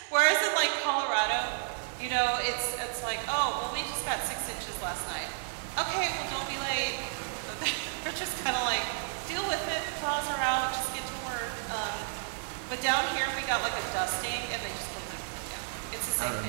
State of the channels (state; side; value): silent; left; digital silence